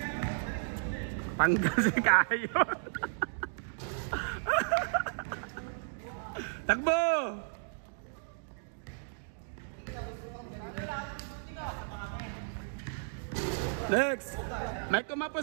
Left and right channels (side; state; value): left; silent; digital silence